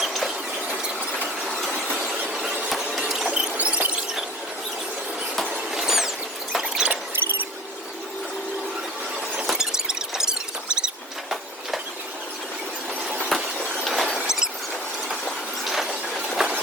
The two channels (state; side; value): normal; both; correlation 0.42